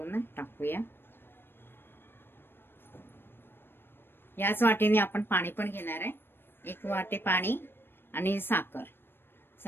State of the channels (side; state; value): right; late; 0.10 ms